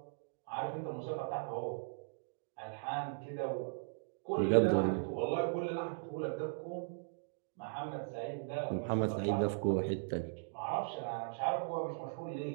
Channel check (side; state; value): left; silent; digital silence